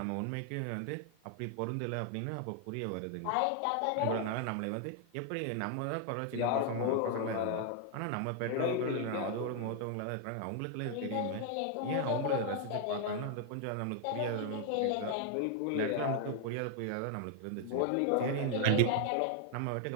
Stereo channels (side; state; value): both; different; correlation 0.00